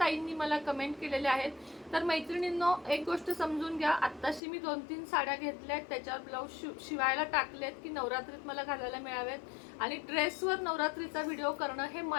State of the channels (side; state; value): right; drops out; at 4.4 s